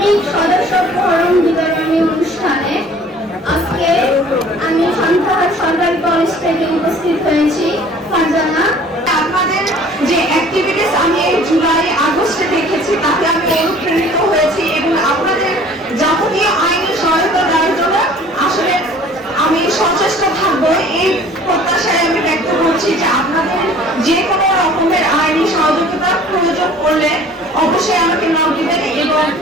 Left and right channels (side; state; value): both; normal; correlation 0.50